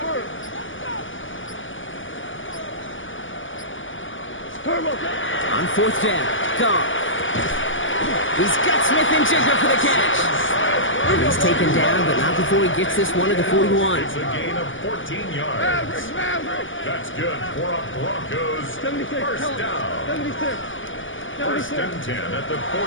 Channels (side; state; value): right; late; 0.57 ms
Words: Turbo. On 4th down. Goff. He's got Smith and Jigger for the catch. He's taken down, but not before he gets this one to the 41. It's a gain of 14 yards. Maverick. That's good for a Broncos 76. first down. 76. First and 10 at the